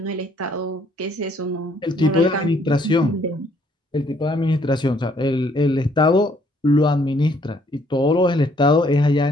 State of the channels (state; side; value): normal; both; correlation 0.65